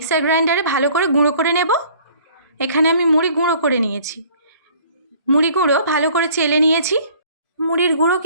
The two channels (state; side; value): inverted; both; correlation -0.54